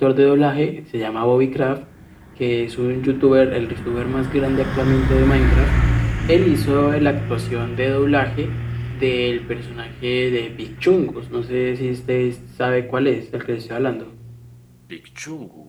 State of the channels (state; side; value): identical; both; correlation 1.00